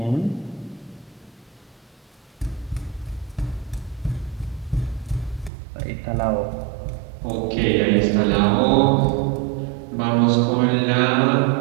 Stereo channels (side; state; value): left; drops out; at 5.5 s